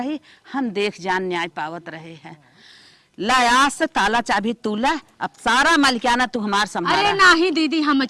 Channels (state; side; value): identical; both; correlation 1.00